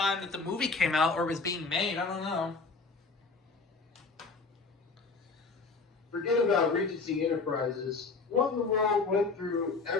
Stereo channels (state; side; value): quieter; right; 4.3 dB